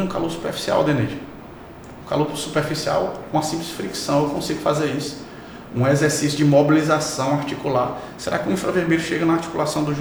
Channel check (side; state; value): both; identical; correlation 1.00